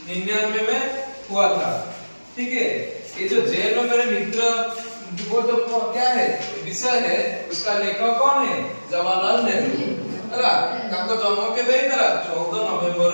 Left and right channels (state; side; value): inverted; both; correlation -1.00